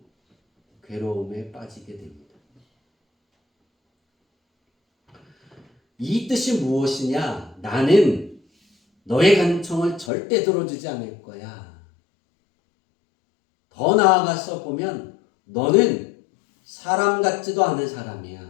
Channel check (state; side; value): drops out; right; at 10.1 s